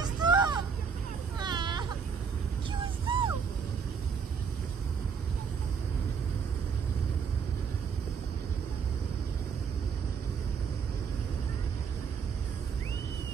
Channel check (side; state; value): left; quieter; 6.3 dB